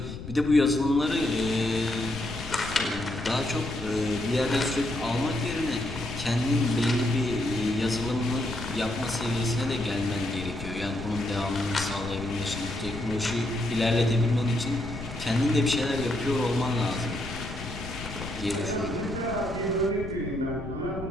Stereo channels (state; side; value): noise; left; rumble, 10 dB below the sound